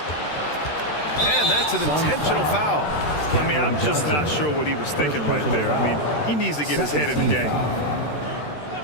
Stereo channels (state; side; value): late; right; 13 ms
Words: And that's an intentional foul. I mean, I'm just not sure what he was thinking right there. I mean, he needs to get his head in the game.